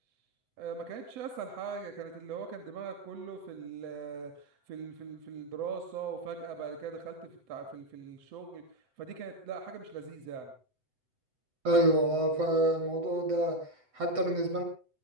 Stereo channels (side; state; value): left; late; 7.9 ms